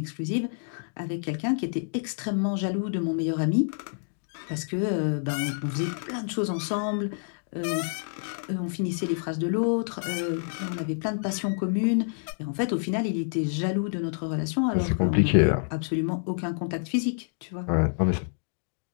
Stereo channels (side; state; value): right; silent; digital silence